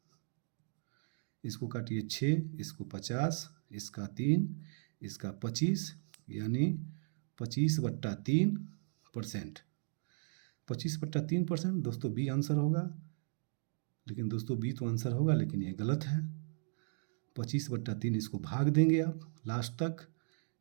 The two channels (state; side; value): silent; left; digital silence